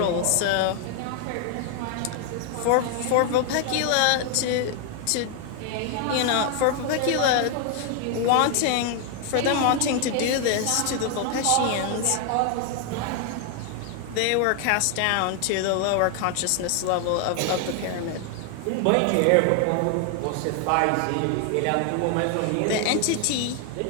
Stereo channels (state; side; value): different; both; correlation 0.00